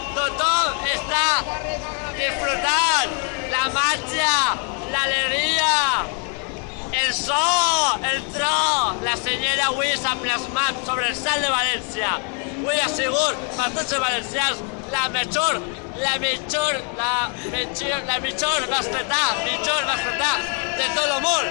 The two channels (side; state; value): right; quieter; 39.6 dB